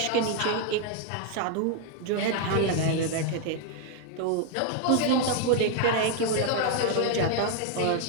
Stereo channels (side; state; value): both; different; correlation 0.01